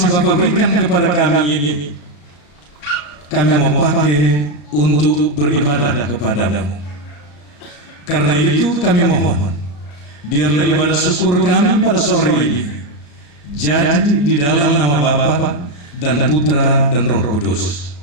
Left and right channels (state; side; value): late; right; 34 ms